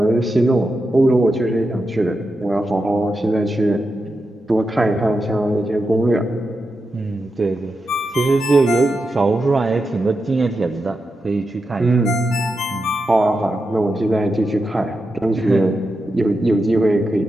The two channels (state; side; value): normal; both; correlation 0.88